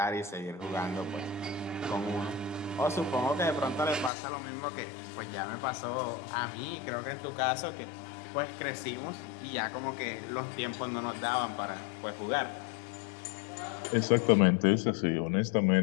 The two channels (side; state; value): right; drops out; at 4.1 s